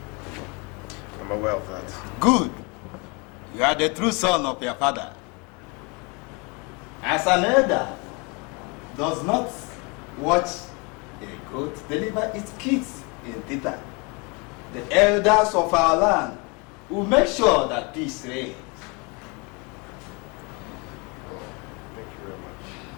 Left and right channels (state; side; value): quieter; right; 30.3 dB